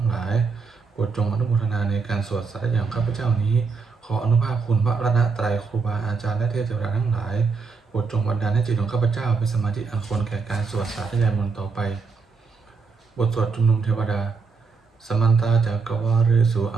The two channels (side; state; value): left; quieter; 4.8 dB